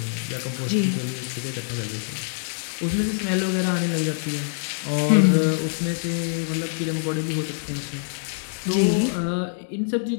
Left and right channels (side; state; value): right; silent; digital silence